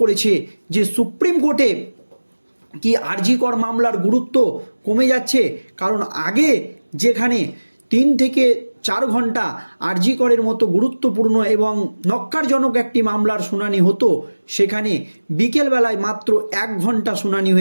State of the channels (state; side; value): inverted; both; correlation -1.00